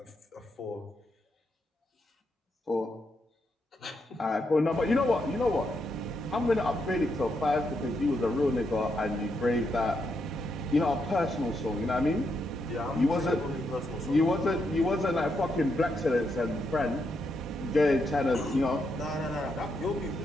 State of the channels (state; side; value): normal; both; correlation 0.80